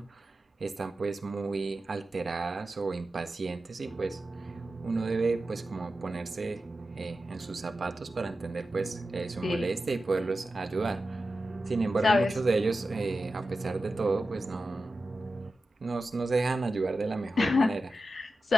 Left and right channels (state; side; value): normal; both; correlation 0.92